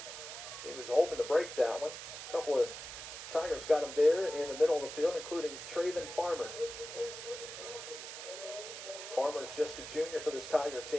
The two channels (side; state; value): right; noise; hiss, 9 dB below the sound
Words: He was hoping to break that one. A couple of Tigers got him there in the middle of the field, including Traven Farmer. Farmer's just a junior for this Tiger